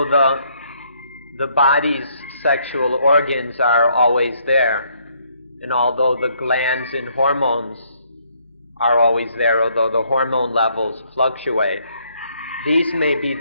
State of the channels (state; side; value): inverted; both; correlation -0.69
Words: the body's sexual organs are always there, and although the glands and hormones are always there, although the hormone levels fluctuate, these may be